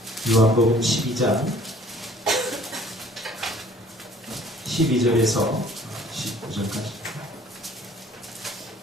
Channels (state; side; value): normal; both; correlation 0.54